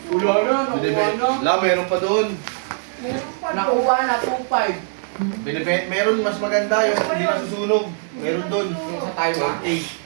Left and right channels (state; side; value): silent; left; digital silence